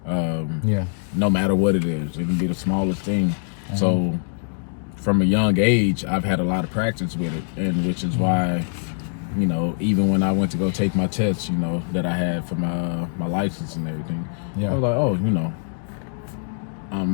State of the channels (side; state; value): right; silent; digital silence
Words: No matter what it is, it can be the smallest thing. So from a young age, I've had a lot of practice with it, and which is why, you know, even when I went to go take my tests, you know, that I had for my license and everything, I was like, oh, you know,